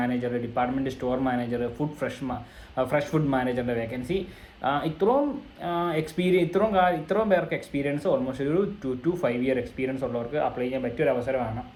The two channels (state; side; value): identical; both; correlation 1.00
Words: department store manager, fresh food മാനേജറിൻ്റെ വേക്കൻസി. ഇത്രയും പേർക്ക് എക്സ്പീരിയൻസ്, ഓൾമോസ്റ്റ് ഒരു 2 to 5 ഇയർ എക്സ്പീരിയൻസ് ഉള്ളവർക്ക് അപ്ലൈ ചെയ്യാൻ പറ്റിയൊരു അവസരമാണ്.